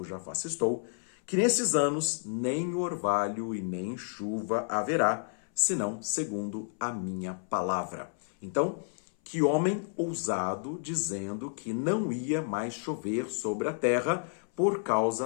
face estou, que nesses anos nem orvalho e nem chuva haverá, senão segundo a minha palavra. Então, que homem ousado dizendo que não ia mais chover sobre a terra por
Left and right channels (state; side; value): silent; right; 57 dB below the other